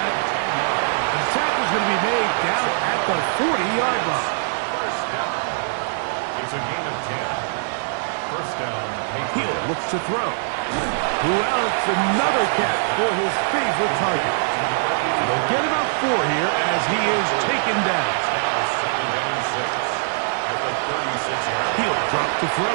The tackle is going to be made down at the 40-yard line. First down. It's a gain of 10. First down. Hill looks to throw. Who else? Another catch for his favorite target. And they'll get about 4 here as he is taken down. Now second and 6 at the 36-yard line. He'll drop to throw.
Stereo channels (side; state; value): left; silent; digital silence